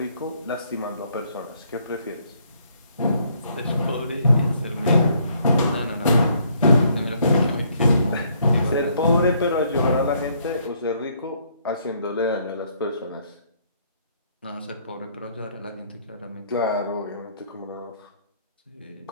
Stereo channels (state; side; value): inverted; both; correlation -0.67